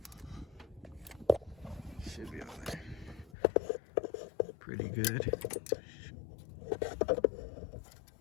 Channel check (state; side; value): drops out; right; at 3.4 s